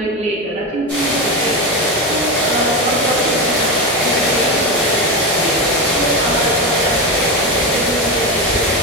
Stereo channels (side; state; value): both; normal; correlation 0.16